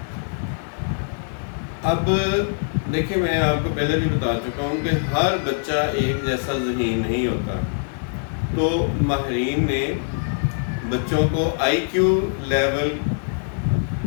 اب دیکھیں، میں آپ کو پہلے بھی بتا چکا ہوں کہ ہر بچہ ایک جیسا ذہین نہیں ہوتا۔ تو ماہرین نے بچوں کو آئی کیو لیول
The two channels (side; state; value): right; silent; digital silence